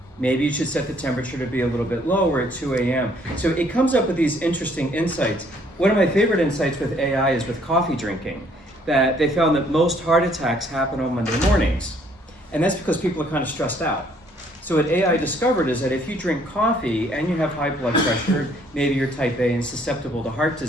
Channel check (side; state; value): both; normal; correlation 0.63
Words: Maybe you should set the temperature to be a little bit lower at 2 a.m. So it comes up with these interesting insights. One of my favorite insights with AI is with coffee drinking, that they found that most heart attacks happen on Monday mornings. And that's because people are kind of stressed out. So what AI discovered is that if you drink coffee and you have high blood pressure, maybe you're type A and susceptible to heart